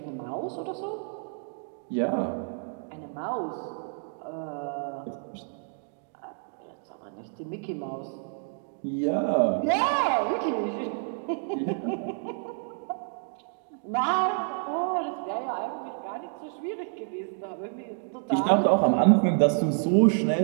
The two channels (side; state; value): left; silent; 58 dB below the other